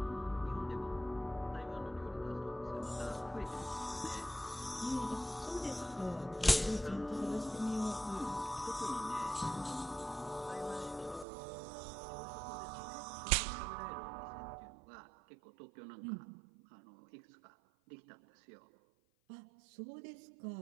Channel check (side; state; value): left; drops out; at 11.2 s